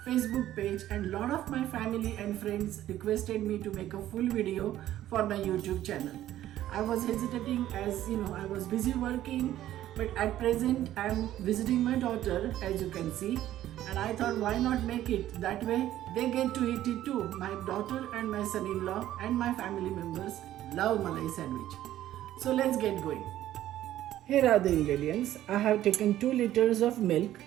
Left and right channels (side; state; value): left; quieter; 13.1 dB